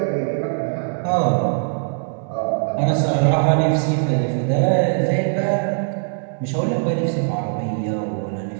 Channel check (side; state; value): left; silent; digital silence